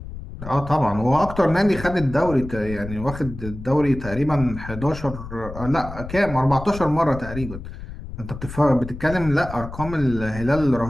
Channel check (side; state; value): left; noise; rumble, 11 dB below the sound